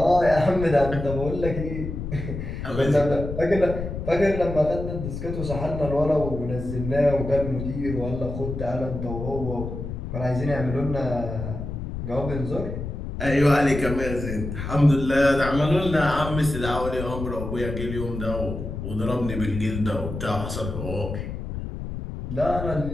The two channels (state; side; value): noise; left; rumble, 6 dB below the sound